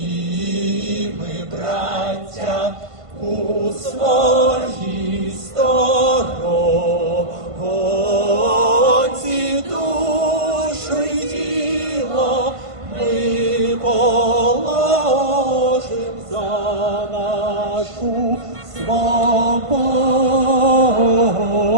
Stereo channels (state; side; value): late; left; 1.5 ms